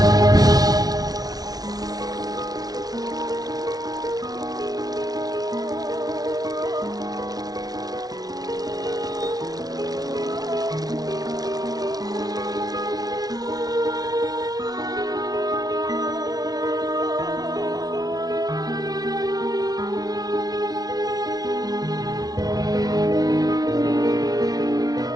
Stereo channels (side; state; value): left; late; 0.19 ms